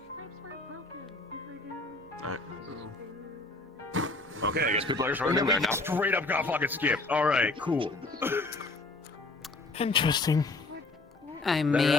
Okay, I guess people are just running in there now. Straight up got fucking skipped. Alright, cool. Interesting. I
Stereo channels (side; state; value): right; quieter; 3.2 dB